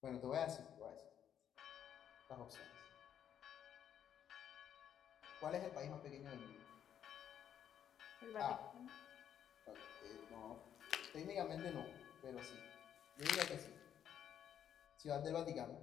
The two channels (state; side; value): quieter; right; 9.4 dB